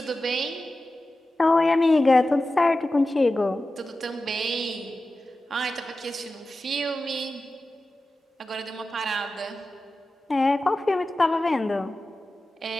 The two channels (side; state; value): both; normal; correlation 0.94